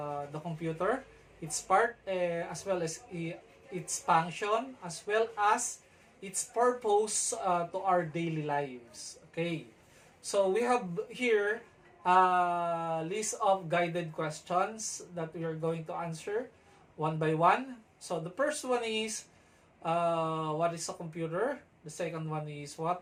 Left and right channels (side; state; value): both; identical; correlation 1.00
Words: computer, its part, as well as its function, as well as its purpose to our daily lives. Okay, so we have here a list of guided questions that we are going to answer one by one. So the first one is, what is a computer? The second one is,